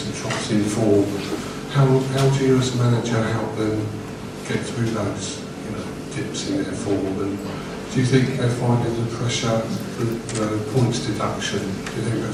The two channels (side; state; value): both; identical; correlation 1.00